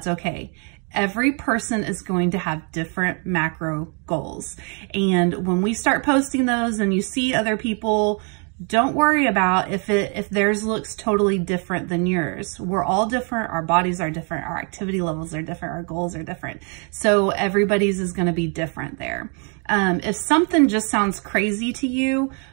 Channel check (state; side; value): quieter; left; 37.3 dB